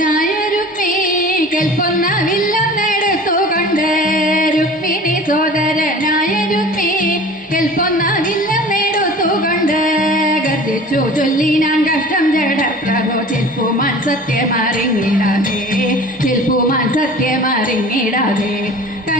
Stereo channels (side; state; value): both; normal; correlation 0.42